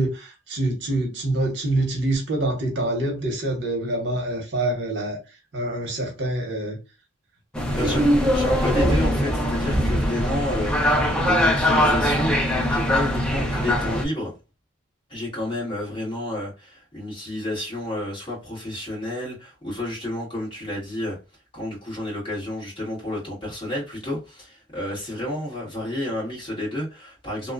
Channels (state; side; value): normal; both; correlation 0.63